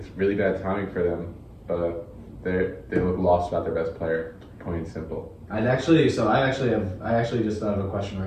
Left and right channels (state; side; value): identical; both; correlation 1.00